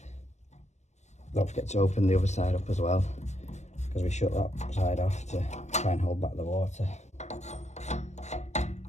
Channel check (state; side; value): late; right; 0.33 ms